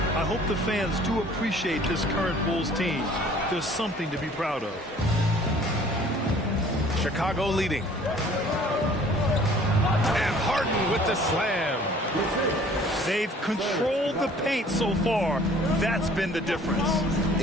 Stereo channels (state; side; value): normal; both; correlation 0.53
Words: I hope the fans do appreciate this current Bulls team. There's something to be proud of. Chicago leading. And Harden with the slam. They've controlled the paint so far. That's been the difference.